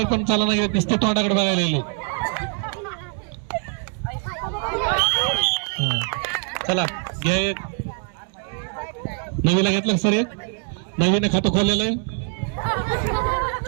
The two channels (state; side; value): quieter; left; 38.8 dB